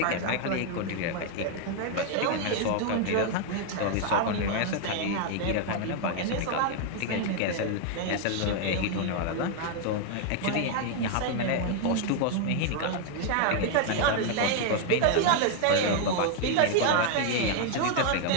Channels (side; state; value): both; different; correlation 0.00